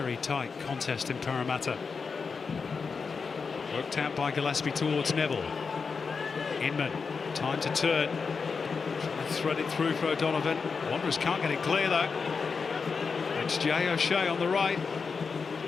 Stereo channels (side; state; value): right; quieter; 5.2 dB